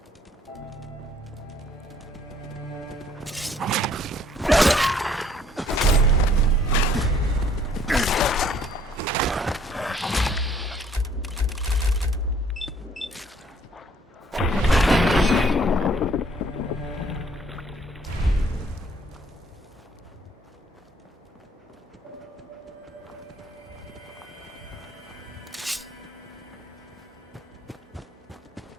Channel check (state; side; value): normal; both; correlation 0.61